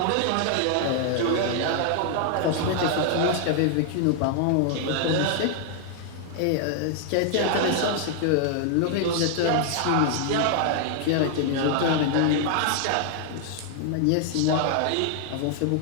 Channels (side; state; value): both; different; correlation 0.00